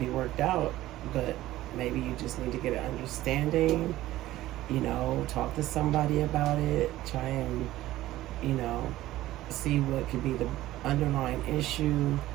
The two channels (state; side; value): quieter; left; 15.5 dB